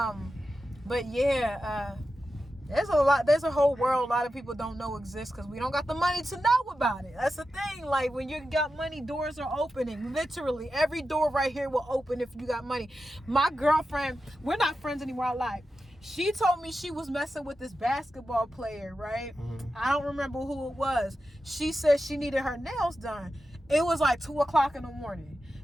yeah, there's a whole world a lot of people don't know exists because we don't got the money to know about it. That's the thing. Like when you got money, doors are opening. Literally, every door right here will open if you got money. My girlfriend, we're not friends anymore. I lied. She told me she was messing with this basketball player, right? I don't remember who it was. She said she needed her nails done. It was like 2:00 in the morning.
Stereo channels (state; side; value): normal; both; correlation 0.91